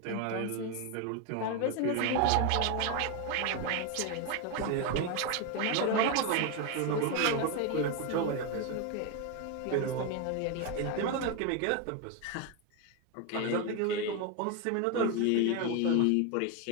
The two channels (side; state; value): both; different; correlation 0.02